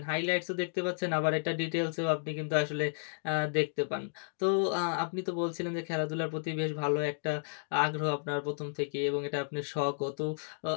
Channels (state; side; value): silent; right; digital silence